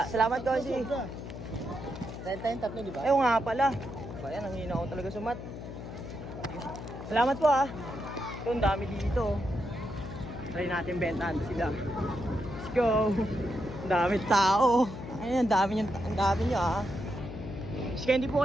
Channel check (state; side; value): noise; left; hum, 10 dB below the sound